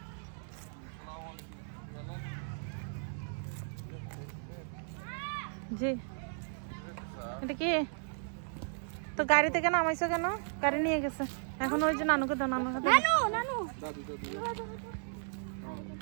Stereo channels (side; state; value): left; silent; 54 dB below the other